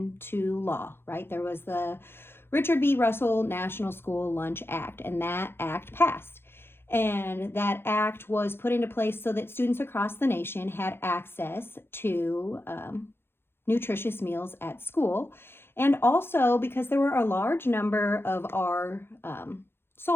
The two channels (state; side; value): late; right; 0.11 ms